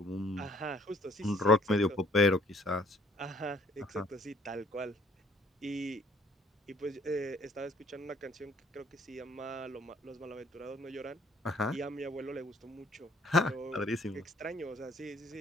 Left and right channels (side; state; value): both; normal; correlation 0.60